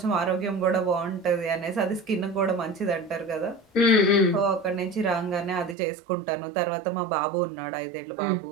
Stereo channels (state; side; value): drops out; left; at 5.8 s